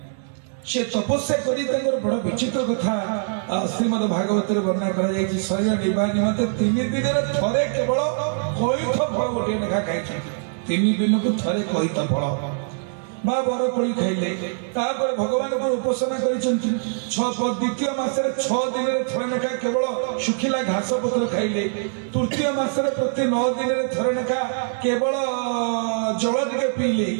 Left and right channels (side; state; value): left; silent; digital silence